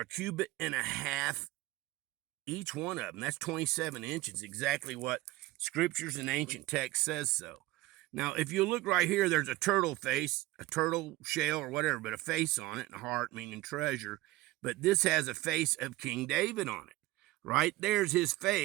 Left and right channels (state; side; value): quieter; left; 18.5 dB